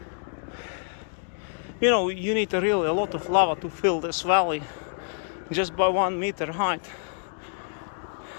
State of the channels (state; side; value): silent; right; digital silence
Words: You know, you need really a lot of lava to fill this valley just by 1 meter height,